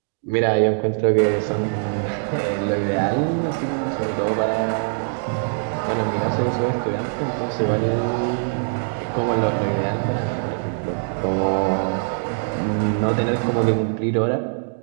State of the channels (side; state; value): left; silent; digital silence